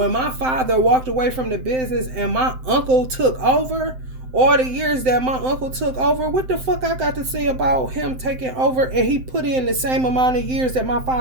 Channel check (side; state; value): left; late; 7.8 ms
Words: my father walked away from the business and my uncle took over, all the years that my uncle took over, what the fuck I got to say about him taking over? And he put in the same amount of years that my